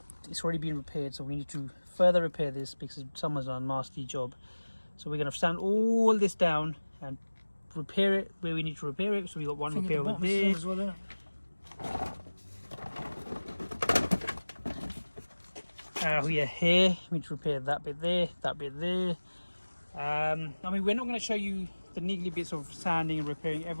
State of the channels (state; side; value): inverted; both; correlation -1.00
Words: it's already been repaired. So we need to further repair this because someone's done a nasty job. So we're gonna sand all this down and repair it where we need to repair it. So we got one repair over there. As well, Oh yeah, here we need to repair that bit there, that bit there. I mean, we're not going to show you the niggly bits of sanding and repairing.